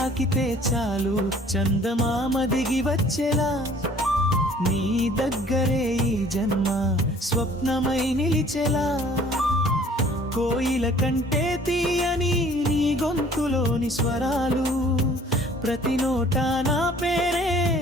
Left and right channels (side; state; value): both; normal; correlation 0.54